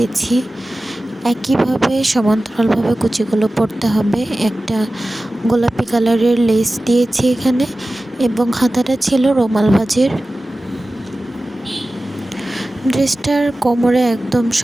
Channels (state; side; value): normal; both; correlation 0.96